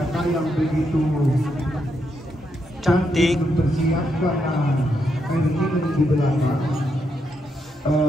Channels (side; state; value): both; normal; correlation 0.80